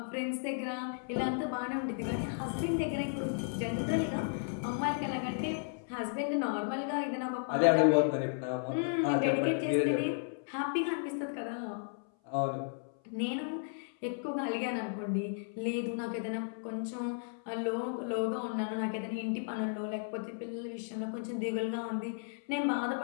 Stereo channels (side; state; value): right; silent; 55 dB below the other